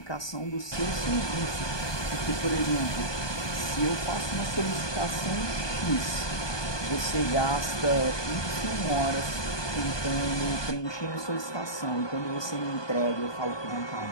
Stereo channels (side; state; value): right; late; 1.2 ms